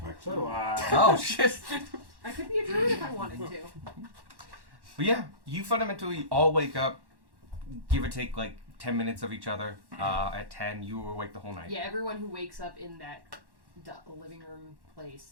So do I. Oh, shit. I could be a druid if I wanted to. But yeah, you fundamentally all wake up, give or take like 10 minutes of each other. At 10, you were awake the whole night. Yeah, everyone who wakes up in that living room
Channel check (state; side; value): late; left; 1.1 ms